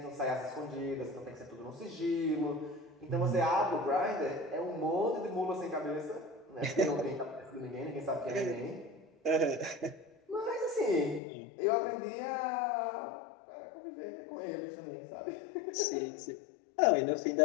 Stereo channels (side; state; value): right; drops out; at 11.2 s